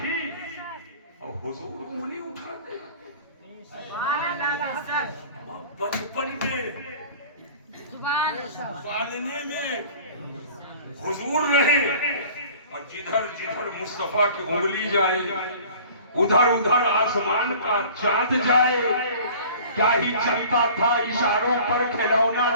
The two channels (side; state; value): both; inverted; correlation -0.46